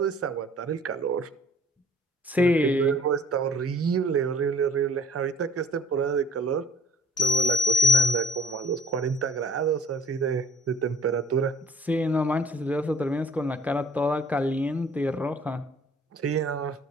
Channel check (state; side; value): normal; both; correlation 0.54